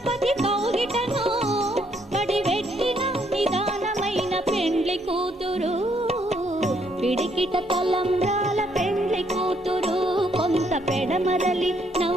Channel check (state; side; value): normal; both; correlation 0.71